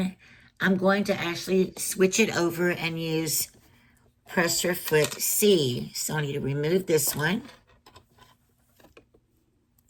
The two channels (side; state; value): both; identical; correlation 1.00